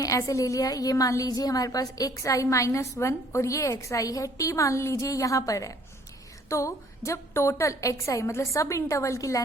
ऐसे ले लिया, ये मान लीजिए हमारे पास एक्स आई -1 और ये एक्स आई है, टी मान लीजिए यहां पर है। तो जब टोटल एक्स आई मतलब सब इंटरवल की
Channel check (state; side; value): normal; both; correlation 0.59